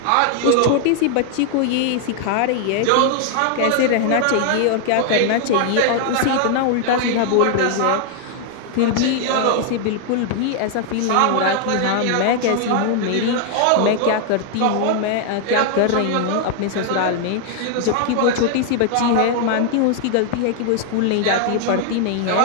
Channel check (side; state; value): both; different; correlation 0.00